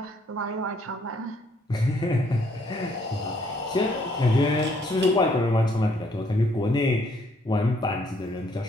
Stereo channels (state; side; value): normal; both; correlation 0.67